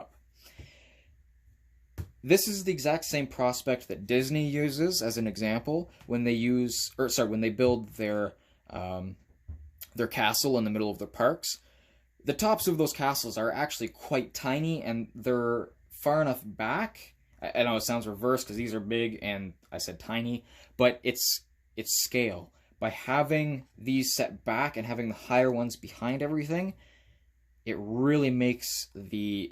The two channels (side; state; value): both; identical; correlation 1.00